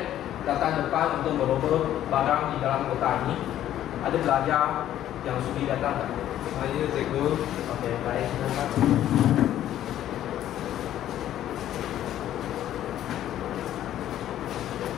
datang depan untuk merogoh barang di dalam kotak ini. Ada pelajar yang sudi datang tak? Saya cikgu. Okey, baik. Silakan.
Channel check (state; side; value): quieter; right; 12.0 dB